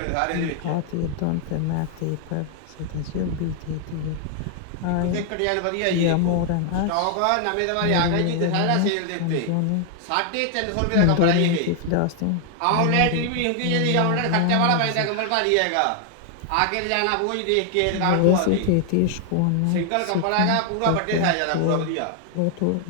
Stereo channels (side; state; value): both; different; correlation 0.00